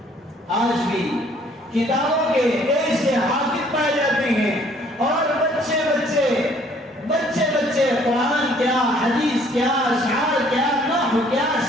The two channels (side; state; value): both; normal; correlation 0.60